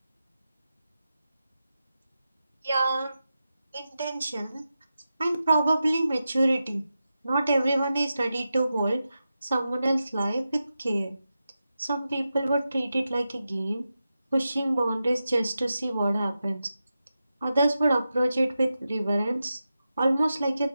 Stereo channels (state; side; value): inverted; both; correlation -0.91